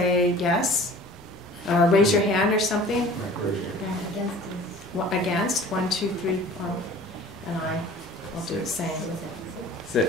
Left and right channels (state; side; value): normal; both; correlation 0.46